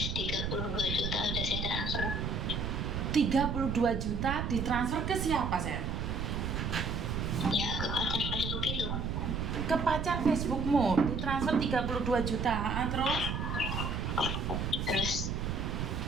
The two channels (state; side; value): noise; right; rumble, 2 dB below the sound